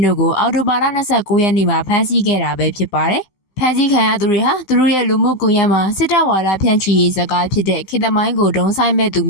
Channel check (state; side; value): late; right; 16 ms